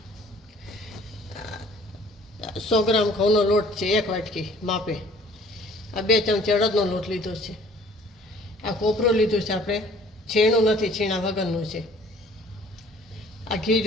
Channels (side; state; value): both; normal; correlation 0.54